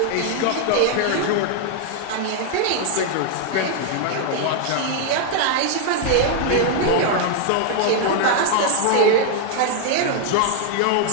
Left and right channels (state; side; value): different; both; correlation 0.00